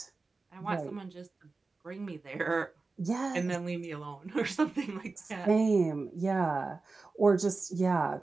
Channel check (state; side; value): quieter; left; 3.9 dB